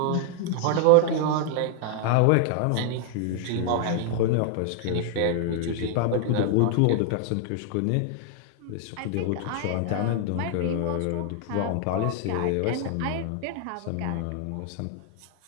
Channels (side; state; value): both; different; correlation 0.00